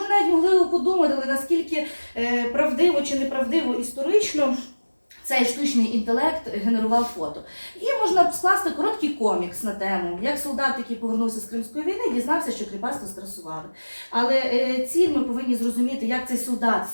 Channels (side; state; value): both; inverted; correlation -1.00